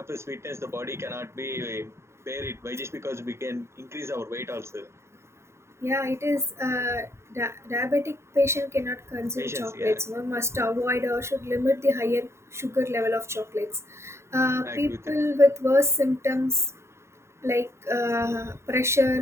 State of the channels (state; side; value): late; left; 0.13 ms